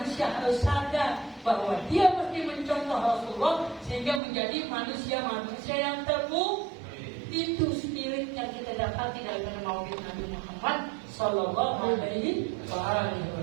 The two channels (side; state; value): left; drops out; at 4.2 s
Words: harus sadar bahwa dia mesti mencontoh Rasulullah sehingga menjadi manusia-manusia yang terpuji. Itu spirit yang kita dapati dari Maulid Nabi Muhammad Sallallahu Alaihi Wasallam.